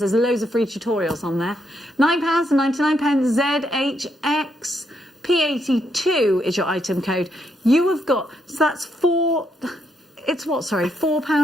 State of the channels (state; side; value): normal; both; correlation 0.77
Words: loads of free tutorials on there. £9.99 ZHX. P82 is your item code. You have got, so that's